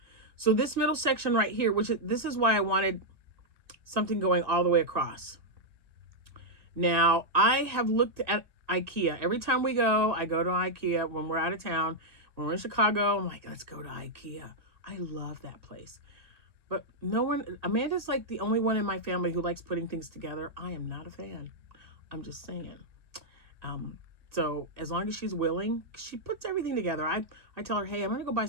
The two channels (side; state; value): left; late; 2.0 ms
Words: So this middle section right here, this is why I wanted something going all the way across. Now I have looked at IKEA. Every time we go, I go to IKEA when we're out of town. When we're in Chicago, I'm like, let's go to IKEA. I love that place. But no one, Amanda's like the only one in my family who likes putting things together. I am not a fan. I'm just saying. So as long as she's willing, she puts everything together. I tell her, hey, I'm going to go buy